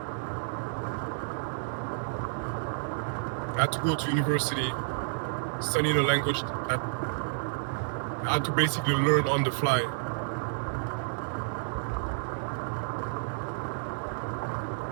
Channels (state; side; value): silent; left; 58 dB below the other